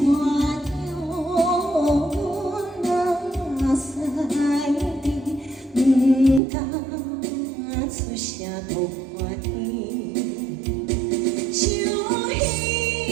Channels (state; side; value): drops out; left; at 6.4 s